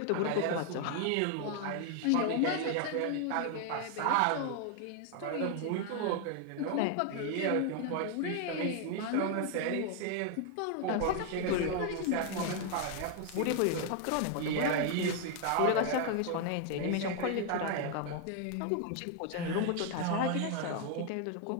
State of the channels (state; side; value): different; both; correlation 0.00